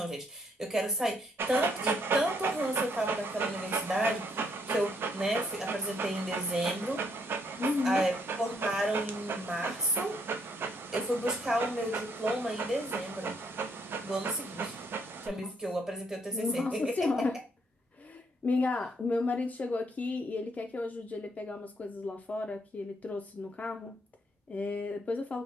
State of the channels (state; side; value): normal; both; correlation 0.71